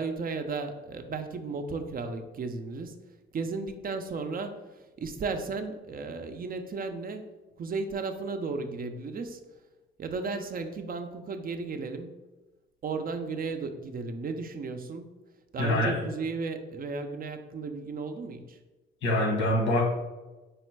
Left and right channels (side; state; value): both; normal; correlation 0.39